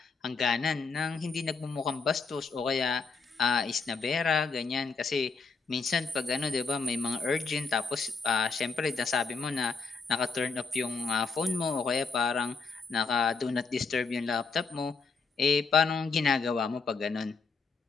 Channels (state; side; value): quieter; right; 4.7 dB